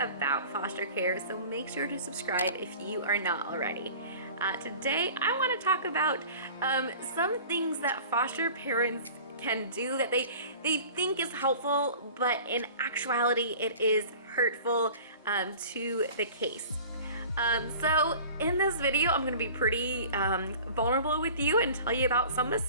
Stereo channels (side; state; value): both; inverted; correlation -0.43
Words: foster care, so make sure to subscribe if you are not already. Today, I want to talk about some things that foster parents can do that they think is helpful, but in actuality, it is hurtful to the case. So in this video, I'm going to be pretty vulnerable with you and tell you about some